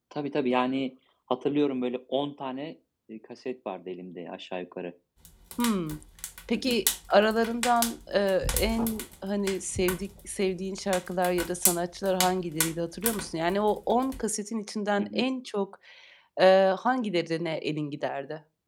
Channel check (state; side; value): identical; both; correlation 1.00